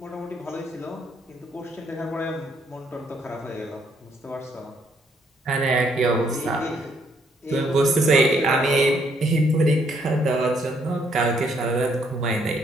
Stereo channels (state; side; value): normal; both; correlation 0.70